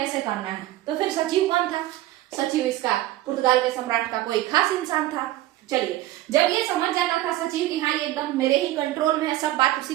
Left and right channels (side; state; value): left; quieter; 15.6 dB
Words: करना है। तो फिर सचिव कौन था? सचिव इसका पुर्तगाल के सम्राट का कोई खास इंसान था। चलिए, जब ये समझ जाता था सचिव कि हाँ ये एकदम मेरे ही कंट्रोल में है, सब बात उसी